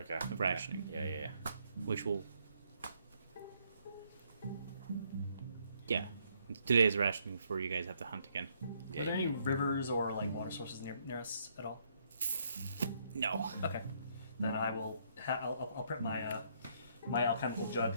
Of rationing. Yeah. which will. Yeah. 2 days of rationing before you guys have to hunt again. Yeah, Are there any yeah. rivers or like water sources near us at all? No. Okay. Then I will. I'll prep my my alchemical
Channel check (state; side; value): inverted; both; correlation -0.71